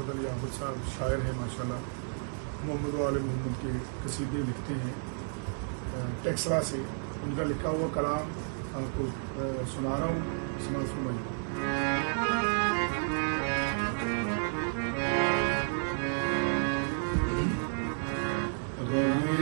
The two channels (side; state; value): left; silent; 57 dB below the other